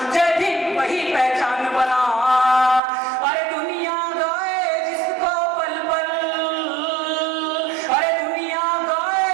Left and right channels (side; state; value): left; drops out; at 2.8 s